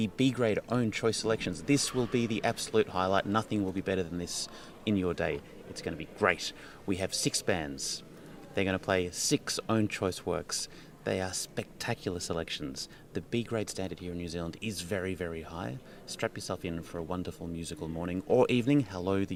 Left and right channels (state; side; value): identical; both; correlation 1.00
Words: B-grade own choice selections. This will be the absolute highlight. Nothing will be better than this in your day. It's going to be great. We have 6 bands. They're going to play 6 own choice works. They are spectacular selections. The B-grade standard here in New Zealand is very, very high. Strap yourself in for a wonderful musical morning or evening. Hello,